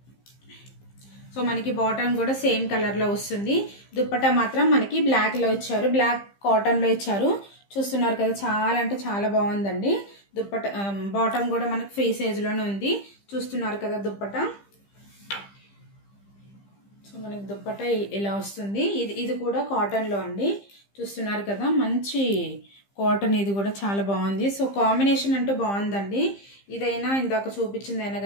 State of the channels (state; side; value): late; right; 15 ms